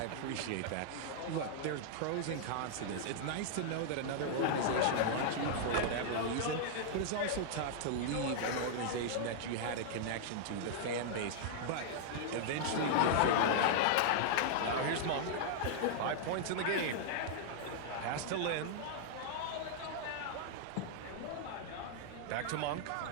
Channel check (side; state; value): both; different; correlation -0.01